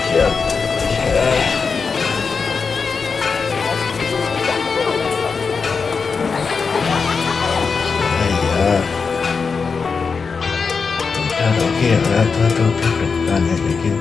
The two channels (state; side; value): quieter; right; 5.2 dB